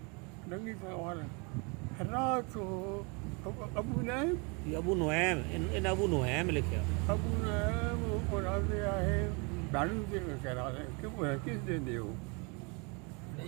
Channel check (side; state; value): left; quieter; 31.4 dB